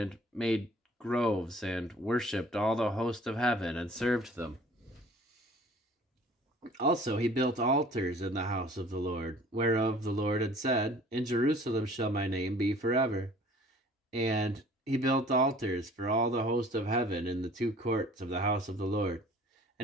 made groves, and worshipped all the host of heaven, and served them. Also he built altars in the house of the Lord, whereof the Lord had said, In Jerusalem shall my name be forever. And he built altars for all the host of heaven in the two courts of the house of the Lord.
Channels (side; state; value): both; normal; correlation 0.51